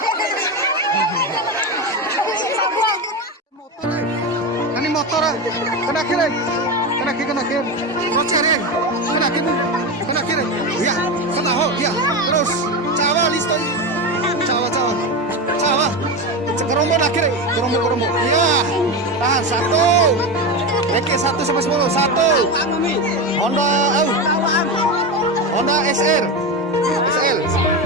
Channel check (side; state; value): both; normal; correlation 0.18